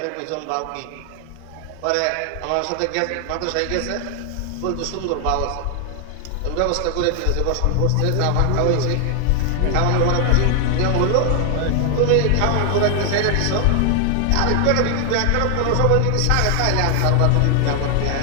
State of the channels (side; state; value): both; different; correlation 0.00